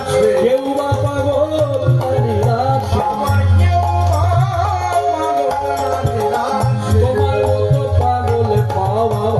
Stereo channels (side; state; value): both; identical; correlation 1.00